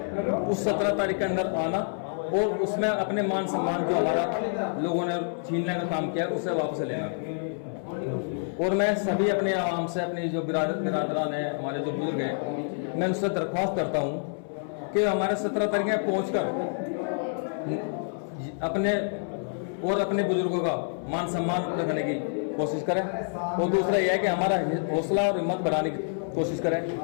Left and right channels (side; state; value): right; silent; 60 dB below the other